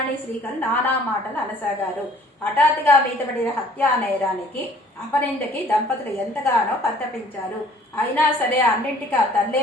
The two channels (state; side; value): normal; both; correlation 0.55